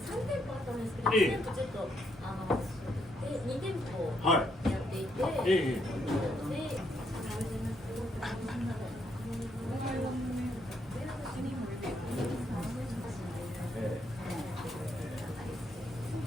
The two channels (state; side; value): normal; both; correlation 0.75